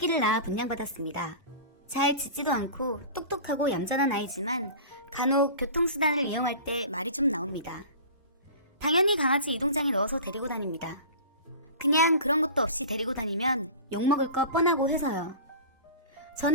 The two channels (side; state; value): both; inverted; correlation -0.37